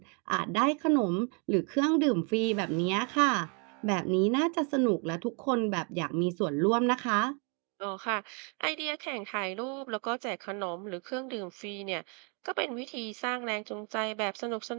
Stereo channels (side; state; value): left; quieter; 36.4 dB